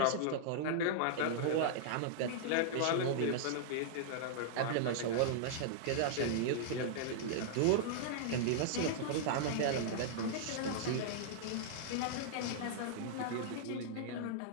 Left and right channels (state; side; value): different; both; correlation -0.01